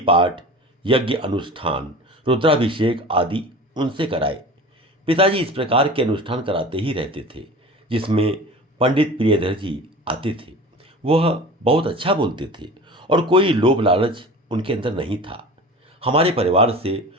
पाठ, यज्ञ अनुष्ठान, रुद्राभिषेक आदि उनसे कराए। पिताजी इस प्रकार के अनुष्ठान कराते ही रहते थे जिसमें पंडित प्रियधर जी आते थे। वह बहुत अच्छा बोलते थे और कोई लोभ लालच उनके अंदर नहीं था। हमारे परिवार से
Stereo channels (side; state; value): both; normal; correlation 0.37